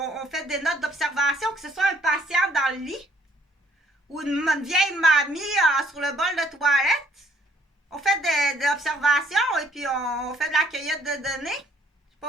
fait des notes d'observation, que ce soit un patient dans le lit ou une vieille mamie sur le bol de toilette. On fait des observations et puis on fait de la cueillette de données. J'ai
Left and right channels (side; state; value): both; normal; correlation 0.65